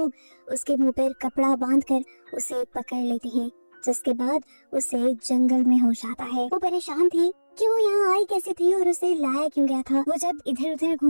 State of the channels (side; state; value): both; inverted; correlation -1.00